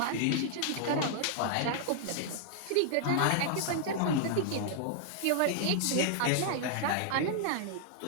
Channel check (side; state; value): both; different; correlation -0.01